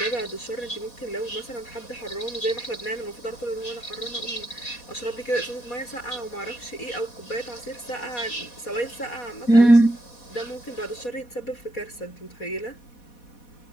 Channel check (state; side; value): late; right; 4.1 ms